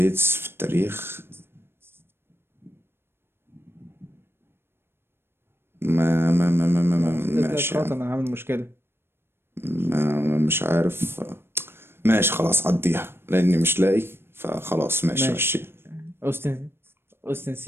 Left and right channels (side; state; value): left; late; 0.11 ms